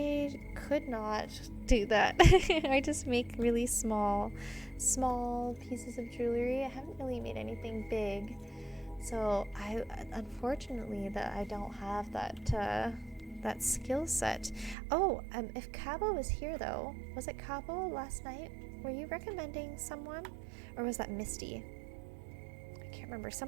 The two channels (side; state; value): left; drops out; at 14.8 s